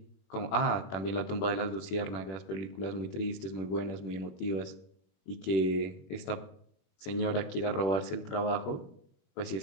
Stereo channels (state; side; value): late; right; 21 ms